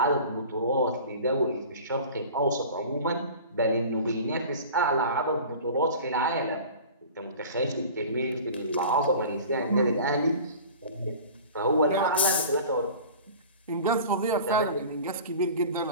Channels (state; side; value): inverted; both; correlation -0.40